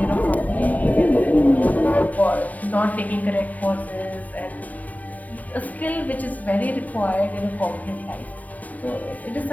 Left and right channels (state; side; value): late; right; 0.074 ms